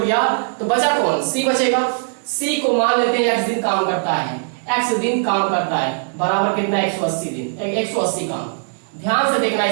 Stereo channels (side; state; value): left; silent; digital silence